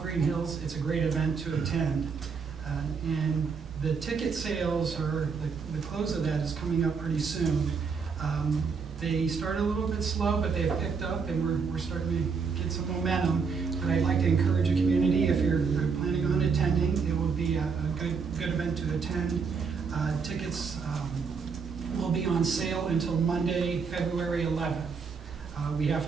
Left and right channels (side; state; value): left; quieter; 5.5 dB